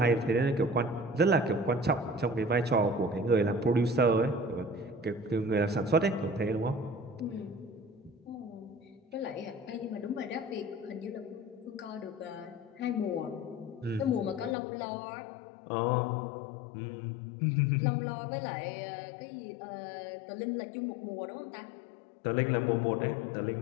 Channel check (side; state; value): right; drops out; at 14.6 s